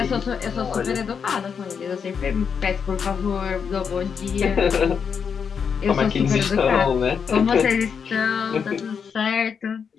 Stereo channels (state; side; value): quieter; right; 6.6 dB